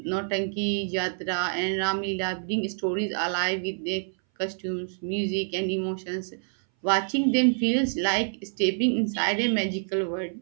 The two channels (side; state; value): left; silent; 59 dB below the other